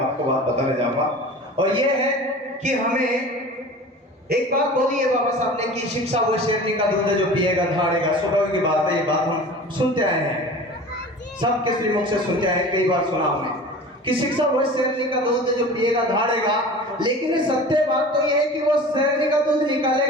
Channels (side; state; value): both; normal; correlation 0.38